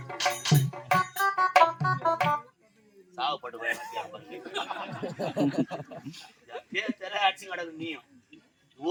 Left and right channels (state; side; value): identical; both; correlation 1.00